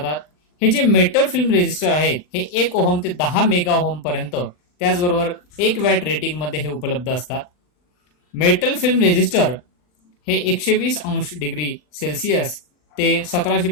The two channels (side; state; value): right; late; 40 ms